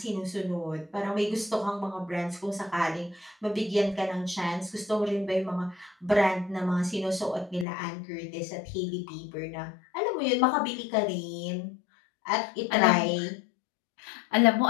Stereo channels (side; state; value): right; drops out; at 7.7 s